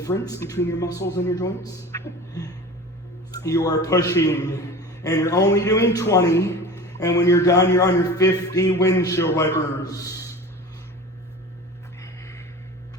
between your muscles and your joints. You are pushing, and you're only doing 20, and when you're done, you're on your 50 windshield wipers.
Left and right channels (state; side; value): normal; both; correlation 0.36